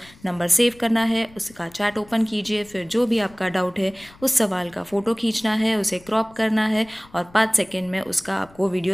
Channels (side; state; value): left; noise; rumble, 25 dB below the sound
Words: नंबर सेव करना है, उसका चैट ओपन कीजिए, फिर जो भी आपका डाउट है उस सवाल का फ़ोटो खींचना है, उसे क्रॉप करना है और 5 सेकेंड में उसका आपको